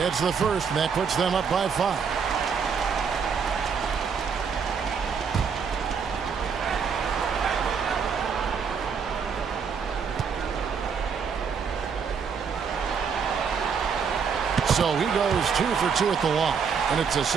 the first, and that puts them up by 5. So he goes 2 for 2 at the line, and it's a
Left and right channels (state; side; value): quieter; left; 6.3 dB